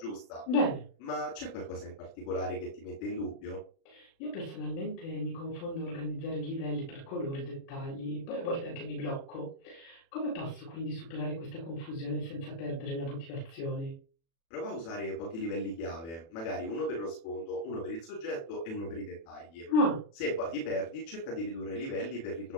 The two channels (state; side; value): late; right; 36 ms